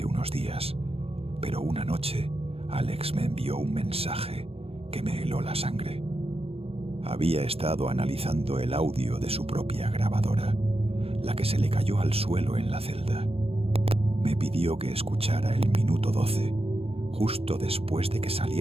unos días, pero una noche Alex me envió un mensaje que me heló la sangre. Había estado analizando el audio de su propia grabadora, la que se le cayó al suelo en la celda. Me pidió que escuchara el minuto 12, justo después de que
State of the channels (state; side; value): late; left; 0.28 ms